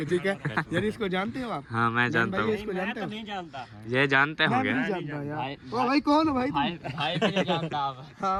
है यार, इसको जानते हो आप? हाँ, मैं जानता हूँ। इसको जानते हो? नहीं जानता, ये जानते मैं होंगे। नहीं जानता यार। ओ भाई कौन हो भाई तुम? भाई भी नहीं जानता आप।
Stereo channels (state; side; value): identical; both; correlation 1.00